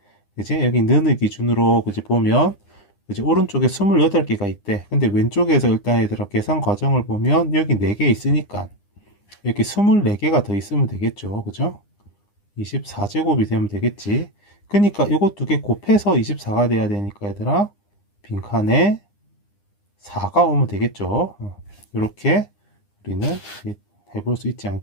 그지? 여기 는을 기준으로, 그지? 보면, 그지? 오른쪽에 28개가 있대. 근데 왼쪽에서 일단 얘들아, 계산 과정을 보면, 여기 4개 있으니까, 여기 24개가 더 있으면 되겠죠. 그죠? 24제곱이 되면 되겠지. 그러니까 이거 두 개 곱해서 24가 돼야 되니까 얘들아, 빈칸에 4가 오면 되겠죠. 이렇게 우리는 해볼 수 있지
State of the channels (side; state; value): right; late; 9.9 ms